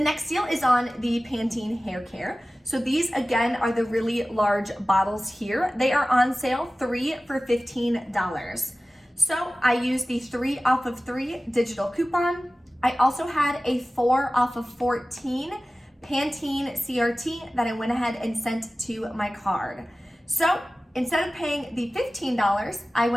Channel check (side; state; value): both; normal; correlation 0.96